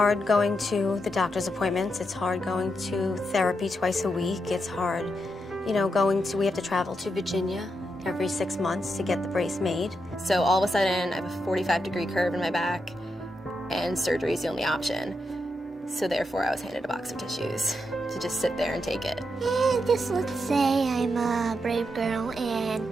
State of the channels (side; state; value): both; normal; correlation 0.84